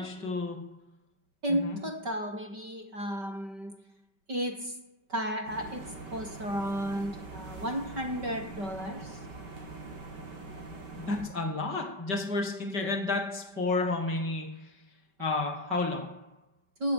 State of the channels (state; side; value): late; left; 5.2 ms